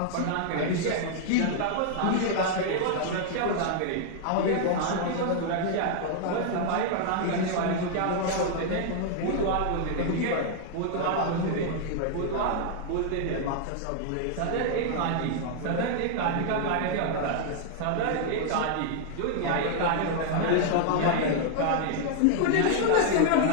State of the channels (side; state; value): both; different; correlation -0.01